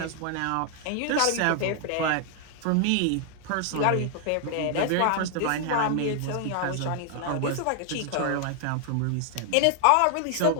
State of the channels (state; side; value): different; both; correlation 0.00